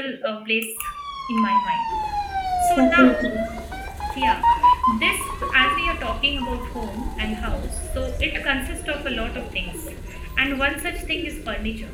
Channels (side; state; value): both; identical; correlation 1.00